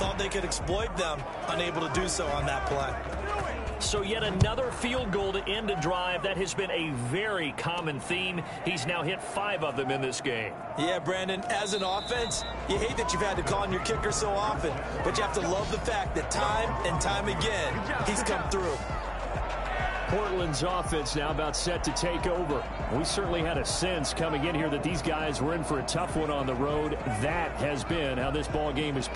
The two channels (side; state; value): both; identical; correlation 1.00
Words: they could exploit them, unable to do so on that play. So yet another field goal to end a drive. That has been a very common theme. He's now hit 5 of them in this game. Yeah, Brandon, as an offense, you hate that you've had to call on your kicker so often, but you have to love the fact that time and time again, he's come through. Portland's offense now about set to take over. We certainly had a sense coming in here that these guys were in for a tough one on the road. That has been how this ball game has